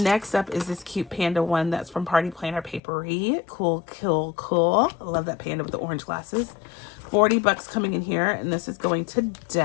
up is this cute panda one that's from Party Planner Papery. Cool. I love that panda with the orange glasses. 40 bucks coming in here, and this is going to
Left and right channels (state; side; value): drops out; right; at 2.8 s